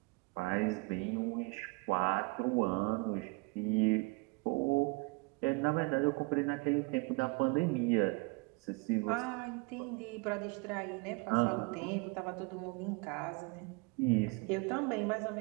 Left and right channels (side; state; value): left; quieter; 27.9 dB